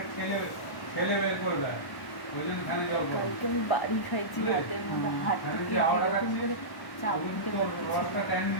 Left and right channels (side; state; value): right; late; 1.1 ms